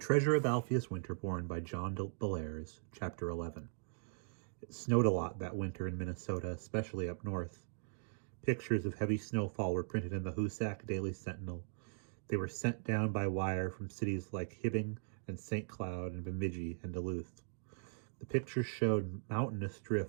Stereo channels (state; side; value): silent; left; digital silence